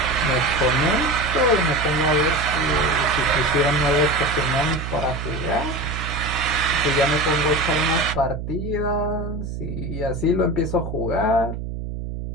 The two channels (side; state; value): right; noise; hum, 6 dB below the sound